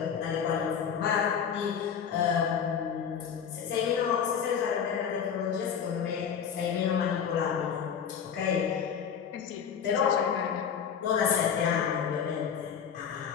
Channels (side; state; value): right; quieter; 7.6 dB